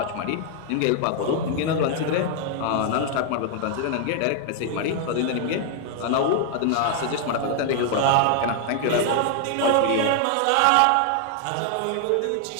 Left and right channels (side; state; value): both; different; correlation 0.00